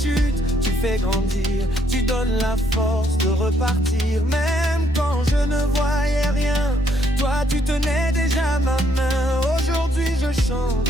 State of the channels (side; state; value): both; normal; correlation 0.71